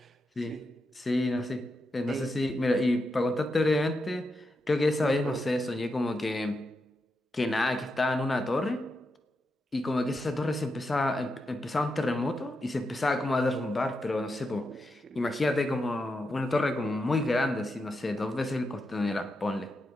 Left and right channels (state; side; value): normal; both; correlation 0.86